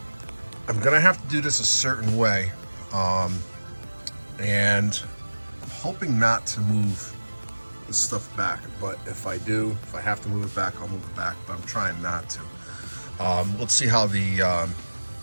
I'm gonna have to do this a certain way, and I'm hoping not to move this stuff back, but if I have to move it back, I'll move it back, but I'm trying not to. Let's see how the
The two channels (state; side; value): inverted; both; correlation -1.00